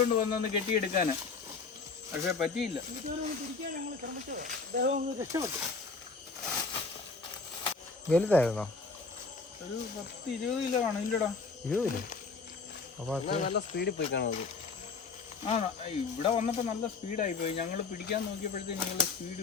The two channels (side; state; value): right; quieter; 4.5 dB